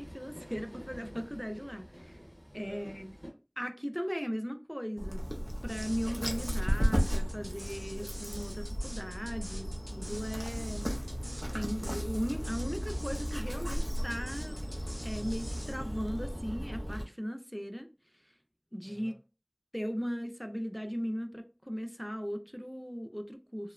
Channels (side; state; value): both; identical; correlation 1.00